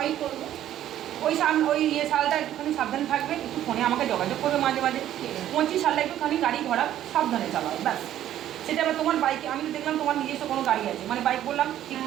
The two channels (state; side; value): quieter; left; 12.0 dB